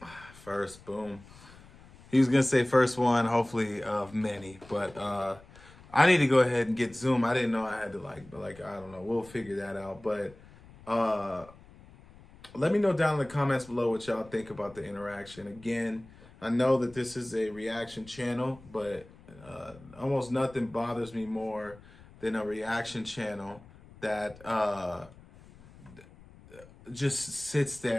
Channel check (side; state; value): left; noise; rumble, 22 dB below the sound